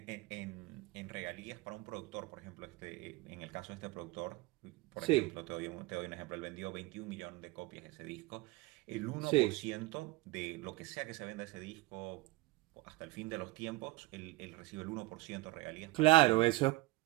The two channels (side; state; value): left; quieter; 20.2 dB